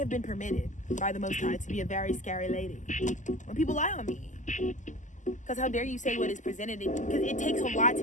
been permitted by the Most High to be a very scary lady. When people lie on me, because how dare you say what is presented? Because it takes a lot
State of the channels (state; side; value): late; right; 0.36 ms